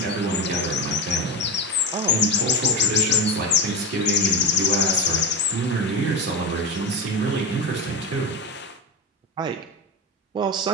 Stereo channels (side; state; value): both; normal; correlation 0.20